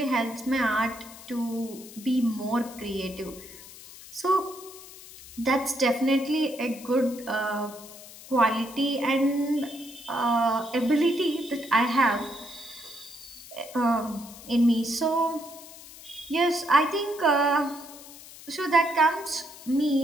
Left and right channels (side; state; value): left; noise; hiss, 17 dB below the sound